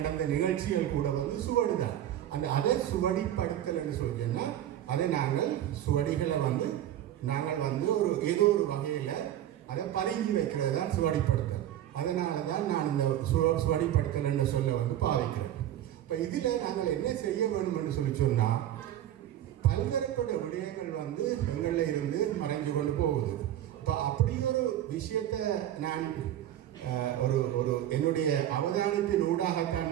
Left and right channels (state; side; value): quieter; left; 11.8 dB